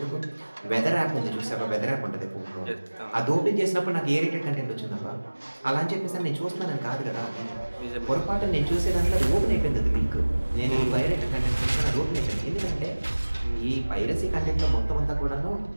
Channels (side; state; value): both; inverted; correlation -1.00